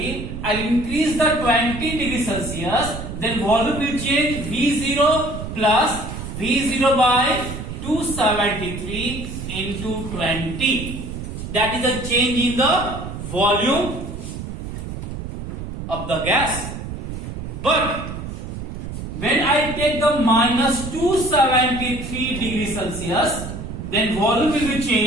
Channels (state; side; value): noise; right; rumble, 8 dB below the sound